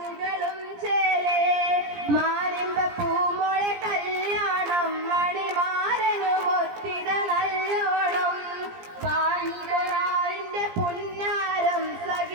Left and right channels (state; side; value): late; left; 17 ms